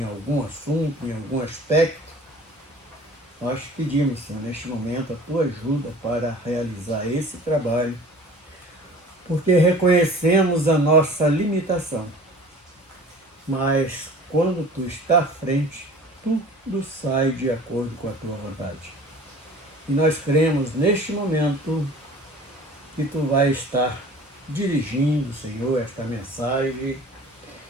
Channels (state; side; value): normal; both; correlation 0.45